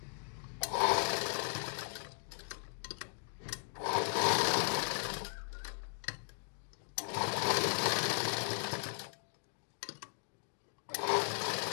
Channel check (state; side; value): silent; right; 53 dB below the other